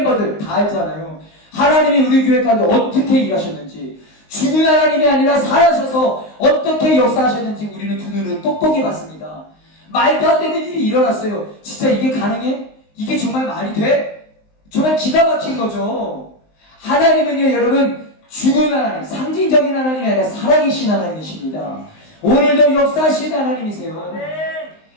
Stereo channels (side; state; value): right; late; 19 ms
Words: 다 알잖아요. 하나님이 우리 교회 가운데 어떻게 일하셨는지, 죽은 하나님이 아니라 살아셔서 어떻게 역사하셨는지 우리는 두 눈으로 똑똑히 봤습니다. 말도 안 되는 일이 일어났어요. 진짜 이게 가능해? 이게 정말 말이 돼? 정말 기가 막힌 거죠. 하나님은요 여러분 죽은 하나님, 상징적인 하나님이 아니라 살아계신 하나님이십니다. 오늘도 역사하시는 하나님이세요. 아멘.